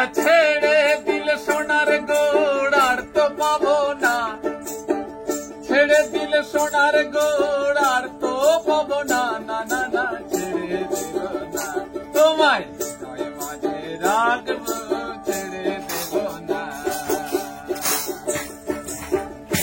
ছেড়ে দিল সোনার গোড় আর তো পাবো না, ছেড়ে দিল সোনার গোড় আর তো পাবো না, না না না ছেড়ে দিল না তোমায়, নয় মাঝে রাখবো ছেড়ে দেব না।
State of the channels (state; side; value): identical; both; correlation 1.00